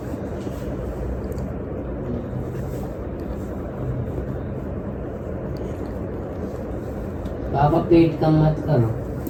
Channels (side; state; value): both; identical; correlation 1.00